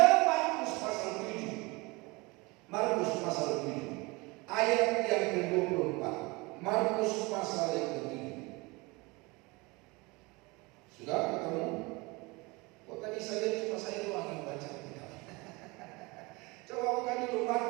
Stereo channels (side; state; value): left; quieter; 25.2 dB